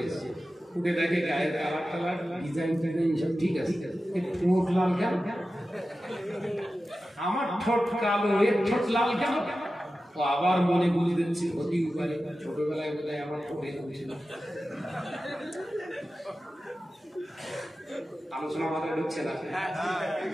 এসছে। উঠে দেখে গায়ের কালার টালার ডিজাইন টিজাইন সব ঠিক আছে, ঠোঁট লাল কেন? আমার ঠোঁট কালো, এর ঠোঁট লাল কেন? ও আবার মনে বুঝে দিচ্ছে হতেই পারে ছোটবেলায় বোধহয় আমার ঠোঁট এরকম ছিল। আলোচনা মাথায় ঢুকছে না।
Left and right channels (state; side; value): normal; both; correlation 0.93